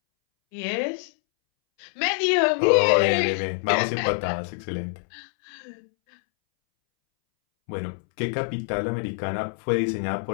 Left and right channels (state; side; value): silent; right; 62 dB below the other